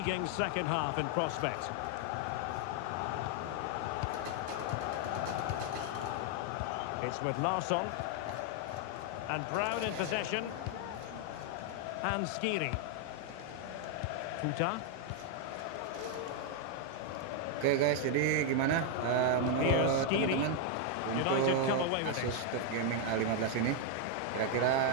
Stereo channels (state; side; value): different; both; correlation 0.00